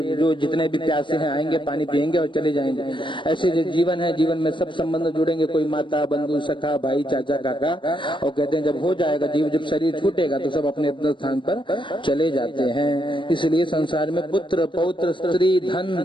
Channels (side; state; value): right; late; 0.24 ms